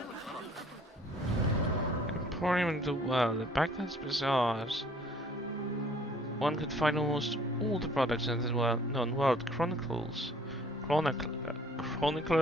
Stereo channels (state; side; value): normal; both; correlation 0.56